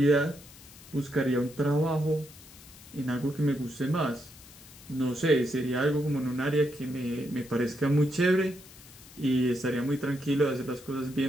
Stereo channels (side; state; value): left; noise; hiss, 20 dB below the sound